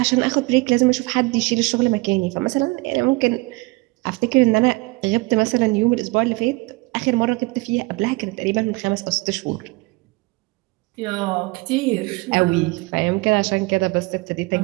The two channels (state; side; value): quieter; left; 24.7 dB